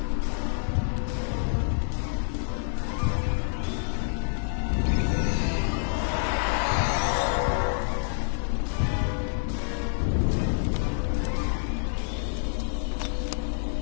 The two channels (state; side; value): silent; right; digital silence